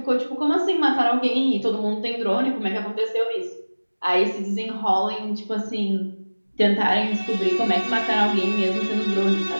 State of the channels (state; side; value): inverted; both; correlation -1.00